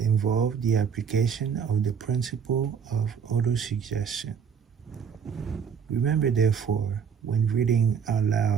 the application of the principle of autosuggestion. Remember, therefore, when reading out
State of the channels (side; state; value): left; quieter; 6.9 dB